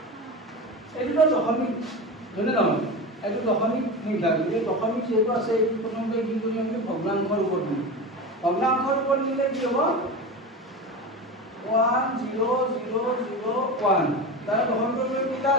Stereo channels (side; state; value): both; normal; correlation 0.25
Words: এইটো দশমিক হয়নে নহয় এইটো দশমিক সংখ্যা এই দশমিক যেটো আছে এই প্ৰথমতে কি কৰিম আমি ভগ্নাংশৰ ৰূপত দিম ভগ্নাংশৰ ৰূপত দিলে কি হ'ব 1 0 0 0 1 তাৰ দশমিক কেইটা